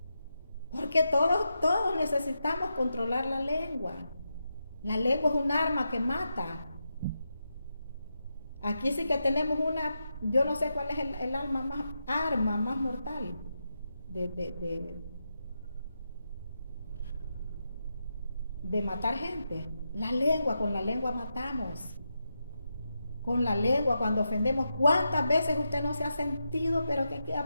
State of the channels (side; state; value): both; inverted; correlation -0.87